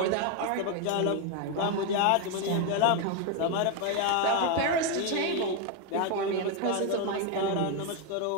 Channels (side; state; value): both; different; correlation 0.02